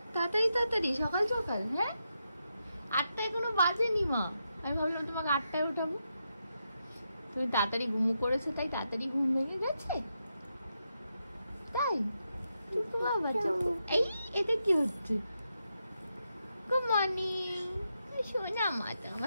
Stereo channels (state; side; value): inverted; both; correlation -0.85